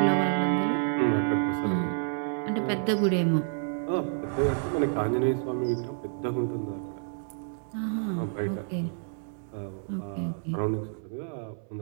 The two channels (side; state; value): left; silent; digital silence